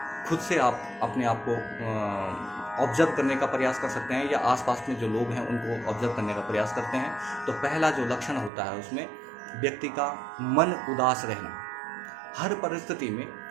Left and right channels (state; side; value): drops out; left; at 8.5 s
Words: खुद से आप अपने आप को ऑब्जर्व करने का प्रयास कर सकते हैं या आसपास में जो लोग हैं उनको ऑब्जर्व करने का प्रयास करते हैं। तो पहला जो लक्षण होता है उसमें व्यक्ति का मन उदास रहना। हर परिस्थिति में